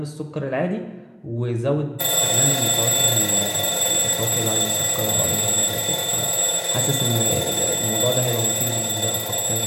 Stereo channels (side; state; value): both; identical; correlation 1.00